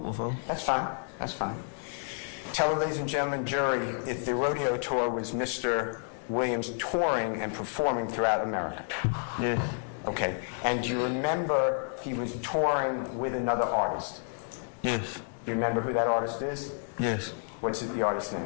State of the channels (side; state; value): right; silent; 58 dB below the other